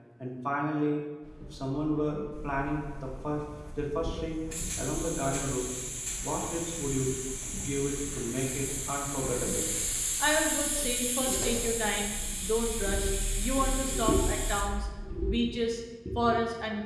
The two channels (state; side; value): identical; both; correlation 1.00